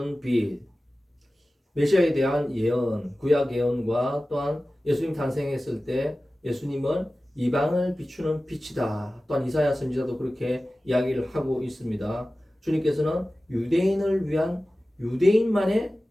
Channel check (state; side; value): normal; both; correlation 0.96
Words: 빛, 메시아에 대한 예언, 구약 예언과 또한 예수님 탄생했을 때 예수님은 이방을 비추는 빛이다. 또한 이사야 선지자도 그렇게 이야기를 하고 있습니다. 주님께서는 유대인을 위한 유대인만의